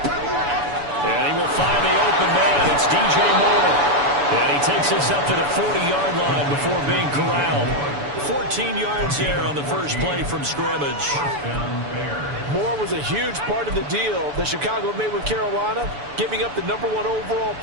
And he will find the open man. It's DJ Moore. And he takes this up to the 40-yard line before being corralled. 14 yards there on the first play from scrimmage. Moore was a huge part of the deal that Chicago made with Carolina, giving up the #1 overall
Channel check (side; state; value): left; late; 7.0 ms